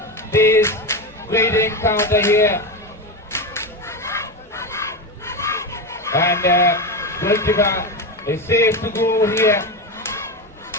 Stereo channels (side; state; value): both; normal; correlation 0.17